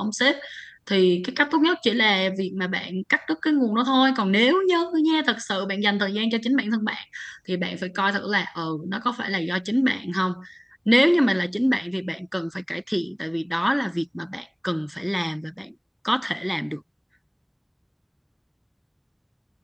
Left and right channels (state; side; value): identical; both; correlation 1.00